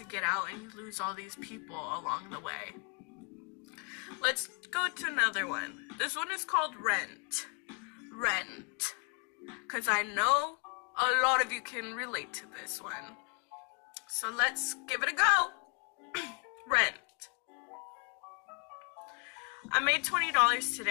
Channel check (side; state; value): right; quieter; 37.0 dB